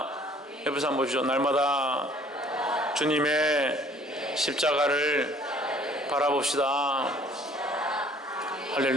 옆에서 한번 보시죠. 날마다 주님의 십자가를 바라봅시다.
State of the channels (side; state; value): both; normal; correlation 0.56